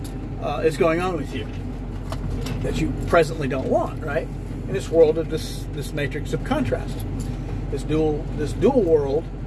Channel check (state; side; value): identical; both; correlation 1.00